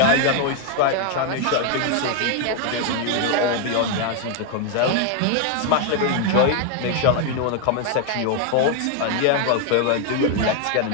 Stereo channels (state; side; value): different; both; correlation 0.01